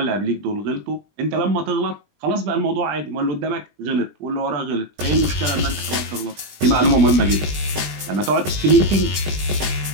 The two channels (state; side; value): late; left; 20 ms